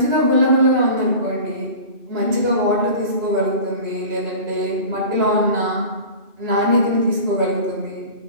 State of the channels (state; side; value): late; left; 2.5 ms